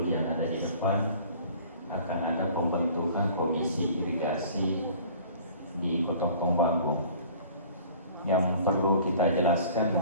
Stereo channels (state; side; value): inverted; both; correlation -0.49